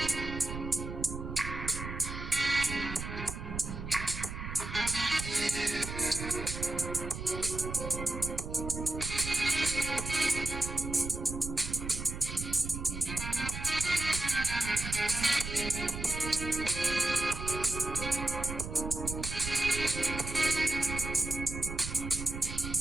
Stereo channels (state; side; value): noise; right; rumble, 7 dB below the sound